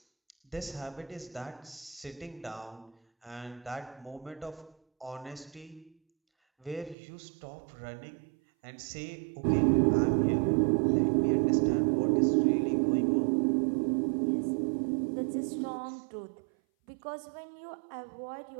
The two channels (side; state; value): left; drops out; at 7.0 s